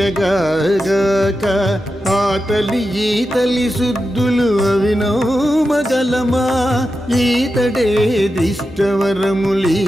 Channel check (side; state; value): both; normal; correlation 0.90